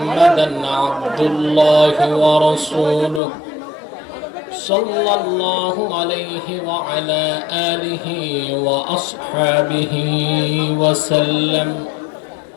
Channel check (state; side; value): drops out; right; at 3.2 s